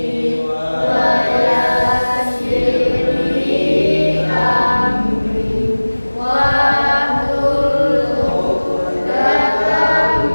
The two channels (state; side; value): inverted; both; correlation -1.00